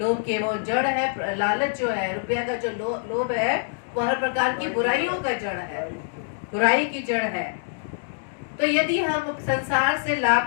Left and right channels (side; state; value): right; silent; digital silence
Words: के वो जड़ है, लालच जो है, रुपया का जो लोभ है वो हर प्रकार की बुराइयों का जड़ है, बुराई की जड़ है। तो यदि हम संसार से